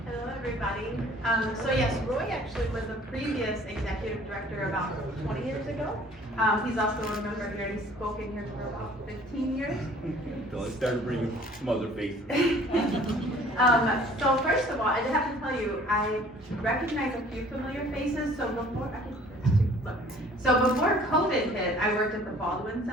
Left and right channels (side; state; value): both; normal; correlation 0.53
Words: Hello, everybody. So yes, Roy actually was a previous executive director about 20 years ago. He's also a member here, and he's spoken here for about 15 years. So I started bringing some other faces. So first of all, I have to tell you, I recognize a few familiar faces. So before COVID hit, I worked at the Baldwin